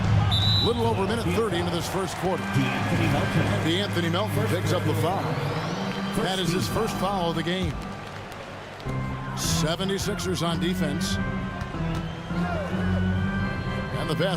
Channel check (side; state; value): both; identical; correlation 1.00